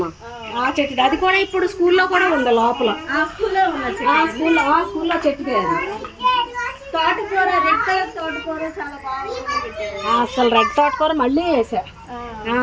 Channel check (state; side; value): identical; both; correlation 1.00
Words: ఆ చెట్టుది. అది కూడా ఇప్పుడు స్కూల్లో కూడా ఉంది లోపల. స్కూల్లో చెట్టుదే అది. తోటకూర, రెడ్ కలర్ తోటకూర చాలా బాగా. అసలు రెడ్ తోటకూర మళ్ళీ